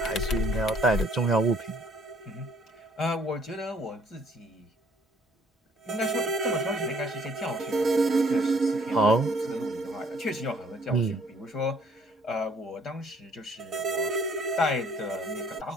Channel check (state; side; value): normal; both; correlation 0.62